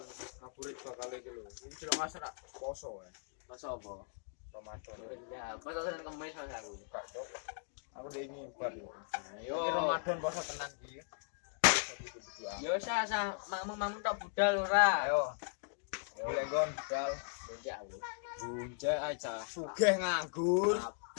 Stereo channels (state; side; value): silent; right; digital silence